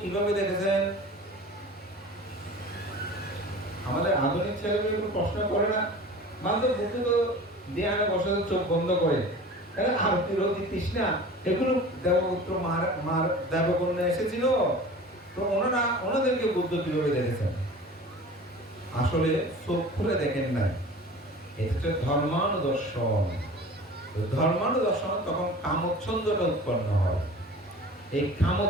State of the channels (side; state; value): both; normal; correlation 0.40